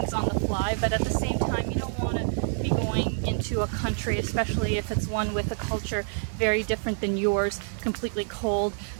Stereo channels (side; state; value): left; silent; digital silence